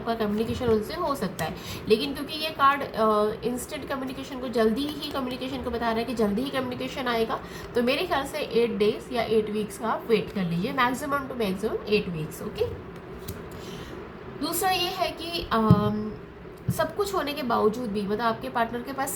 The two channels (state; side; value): identical; both; correlation 1.00